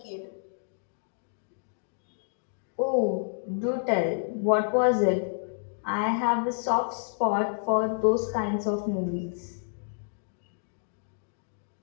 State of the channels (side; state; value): right; silent; digital silence